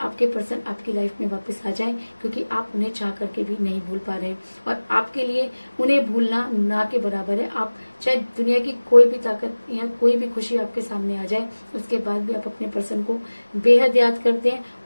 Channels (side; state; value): both; inverted; correlation -1.00